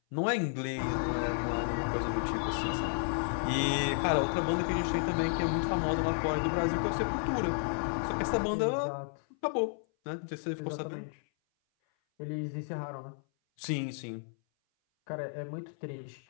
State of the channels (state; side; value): silent; right; 56 dB below the other